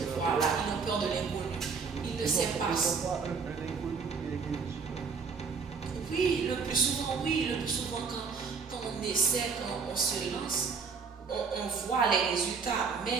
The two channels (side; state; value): left; quieter; 5.4 dB